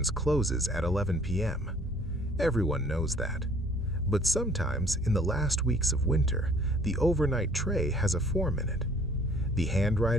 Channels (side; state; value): both; normal; correlation 0.56